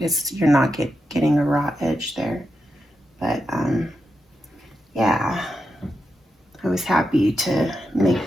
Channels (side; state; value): both; normal; correlation 0.87